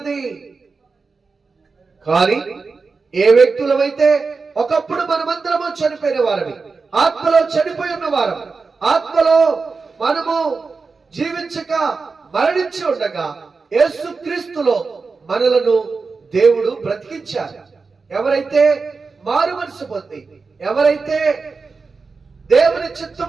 కానీ ఏ వ్యక్తులమైతే ఒకప్పుడు మనమందరము చనిపోయిన వారమి, ఆత్మలో చనిపోయి ఉన్న వారం, ఆత్మలో మనము జీవించక మరణించి ఉండగా యేసు క్రీస్తులో మనలను దేవుడు బ్రతికించారు. ఎవరైతే మారు మనసు పొంది, ఎవరైతే దేవుని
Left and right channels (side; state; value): left; quieter; 4.5 dB